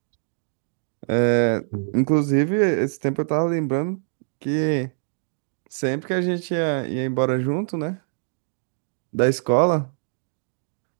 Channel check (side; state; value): left; silent; digital silence